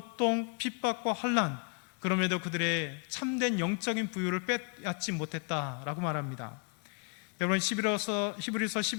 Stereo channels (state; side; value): quieter; right; 37.2 dB